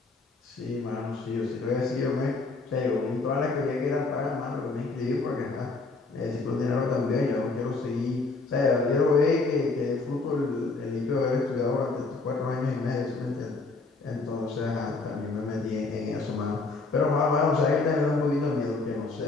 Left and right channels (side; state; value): right; quieter; 3.7 dB